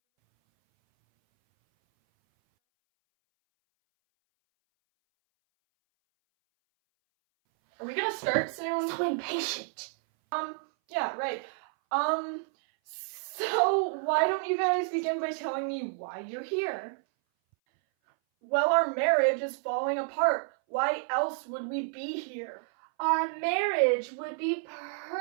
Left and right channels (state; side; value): silent; left; 58 dB below the other